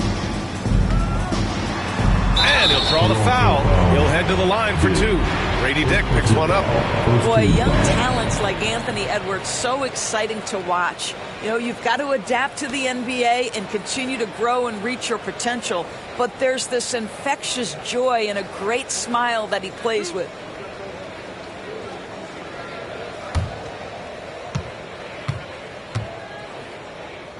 And he'll draw the foul. He'll head to the line for 2. Grady Dick picks one up. Boy, young talents like Anthony Edwards, so exciting to watch. You know, you've got to adapt to the NBA and continue to grow and reach your potential. But there's this infectious joy and a great smile that he plays with.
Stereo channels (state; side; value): identical; both; correlation 1.00